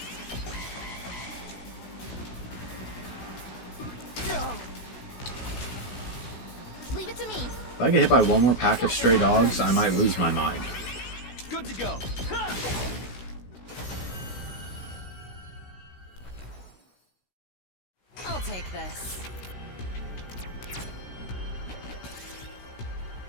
Leave it to me. If I get hit by one more pack of stray dogs, I might lose my mind. Good to go. Ha! I'll take this.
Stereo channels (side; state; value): right; late; 16 ms